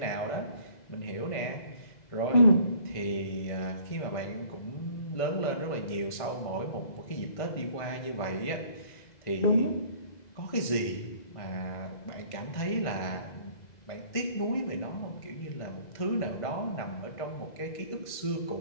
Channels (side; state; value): right; late; 2.0 ms